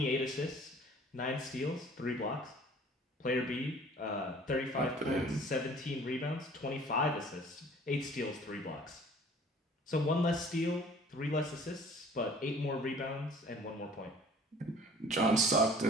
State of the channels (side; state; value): both; normal; correlation 0.50